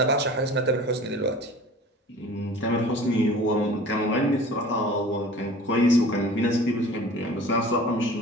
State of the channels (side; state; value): both; normal; correlation 0.43